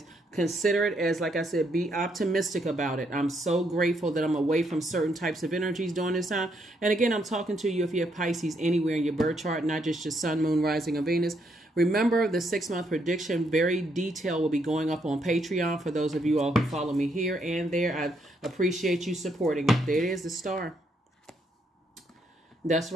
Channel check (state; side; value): normal; both; correlation 0.75